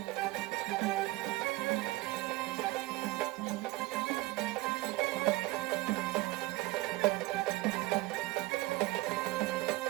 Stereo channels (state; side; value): quieter; left; 19.7 dB